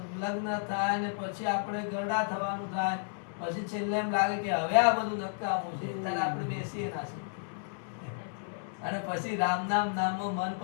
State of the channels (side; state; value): right; silent; digital silence